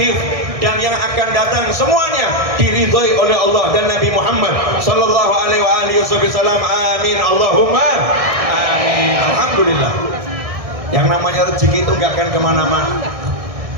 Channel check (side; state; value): left; late; 1.6 ms